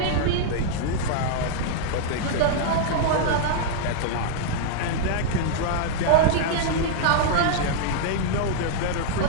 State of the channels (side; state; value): both; different; correlation -0.01